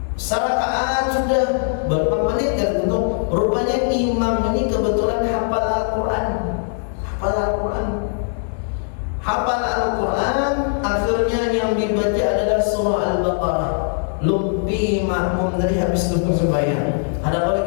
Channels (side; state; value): right; silent; 65 dB below the other